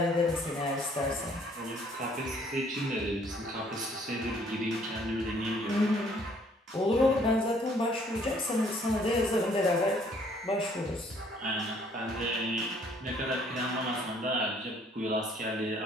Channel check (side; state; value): both; normal; correlation 0.62